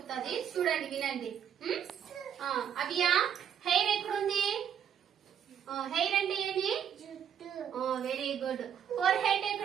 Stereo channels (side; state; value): left; quieter; 8.8 dB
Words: చూడండి, వినండి. అవ్య, హెయిర్ ఎక్కడుంది? హెయిర్ అంటే ఏమి? Very good. ఫోర్ హెడ్